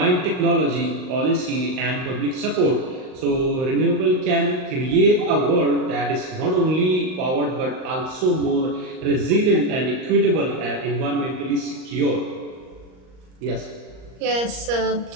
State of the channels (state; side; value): late; left; 38 ms